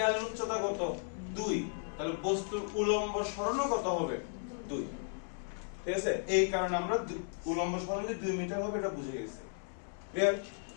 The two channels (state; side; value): silent; right; 54 dB below the other